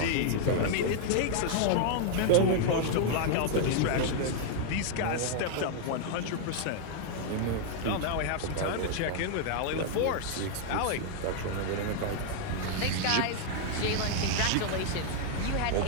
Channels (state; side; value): different; both; correlation 0.00